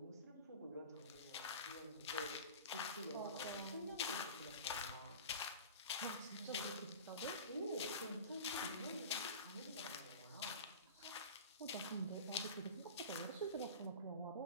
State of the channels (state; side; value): inverted; both; correlation -0.34